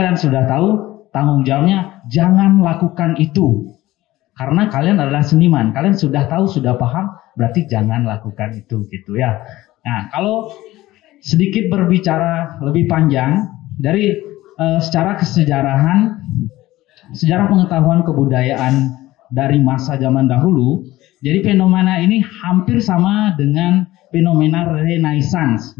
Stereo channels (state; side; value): quieter; right; 16.9 dB